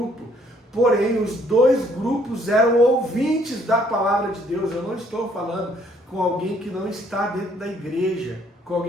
Porém, os dois grupos eram ouvintes da palavra de Deus. Eu não estou falando com alguém que não está dentro da igreja, com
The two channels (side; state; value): both; normal; correlation 0.64